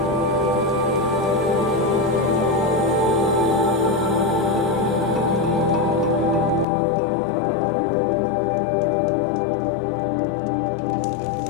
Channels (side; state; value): right; drops out; at 6.7 s